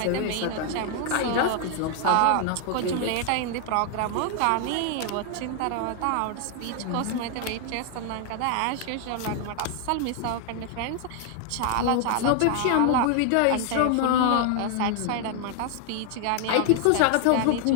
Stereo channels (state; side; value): different; both; correlation 0.00